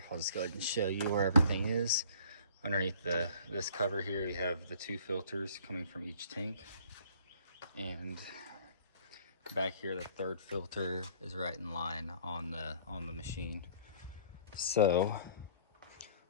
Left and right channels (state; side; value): inverted; both; correlation -0.53